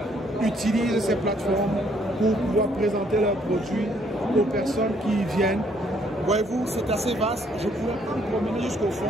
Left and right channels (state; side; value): normal; both; correlation 0.66